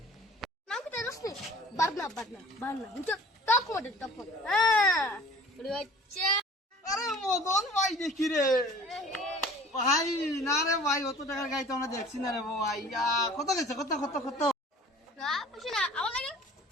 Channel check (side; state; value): both; normal; correlation 0.47